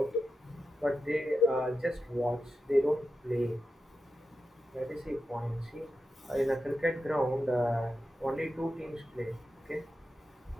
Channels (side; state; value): both; normal; correlation 0.90